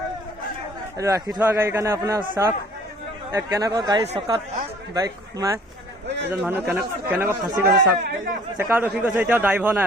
এইটো ৰাখি থোৱা গাড়ীৰ কাৰণে আপোনাৰ চাওক কেনেকুৱা গাড়ী চকাত বাইক সোমাই এজন মানুহ কেনেকুৱা ফাঁচি গৈছে চাওক। চেকাত ৰখি গৈছে, এতিয়াও ড্ৰাইভাৰ নাই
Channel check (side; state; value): both; normal; correlation 0.54